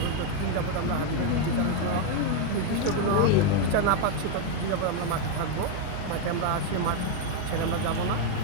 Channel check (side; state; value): both; different; correlation 0.01